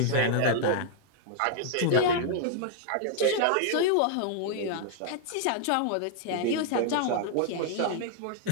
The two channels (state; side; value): different; both; correlation 0.00